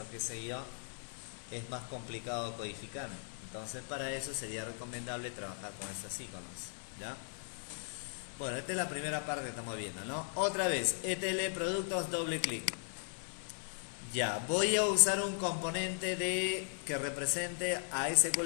qué sé yo, es más complicado codificar. Entonces para eso sería recomendable trabajar con estos iconos, ¿ya? Bueno, esta es la primera parte que estamos viendo, ¿no? Otra vez, ETL productos, doble clic. Ya, voy a usar un componente que represente a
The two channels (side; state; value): right; silent; 53 dB below the other